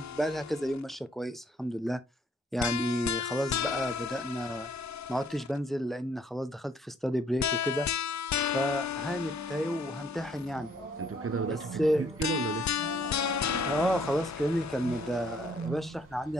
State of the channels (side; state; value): both; normal; correlation 0.64